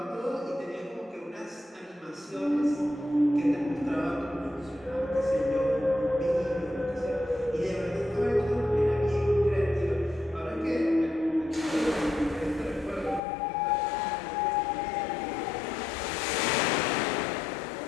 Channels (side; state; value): right; drops out; at 13.2 s